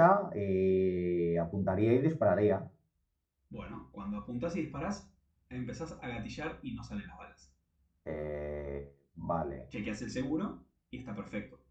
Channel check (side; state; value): both; identical; correlation 1.00